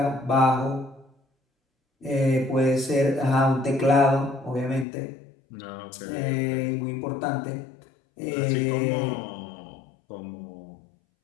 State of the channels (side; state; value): right; drops out; at 4.9 s